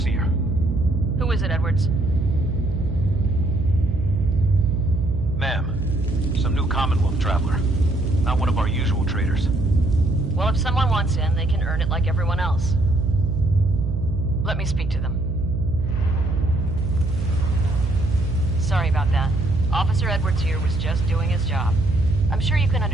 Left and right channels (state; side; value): noise; right; hum, 2 dB below the sound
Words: Who is it, Edwards? Ma'am, some new Commonwealth traveler. Not one of our usual traders. Well, if someone wants in, they can earn it like everyone else. Let me speak to them. Sorry about that. Officer Edwards here was just doing his job. I'm sure you can